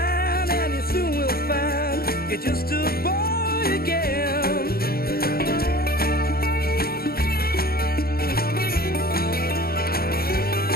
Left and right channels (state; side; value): late; right; 0.44 ms